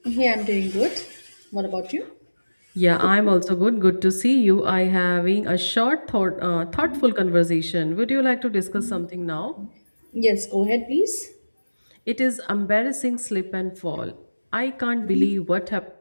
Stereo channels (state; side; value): inverted; both; correlation -1.00